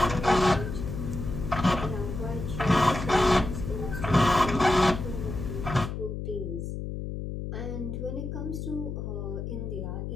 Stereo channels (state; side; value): noise; left; hum, 5 dB below the sound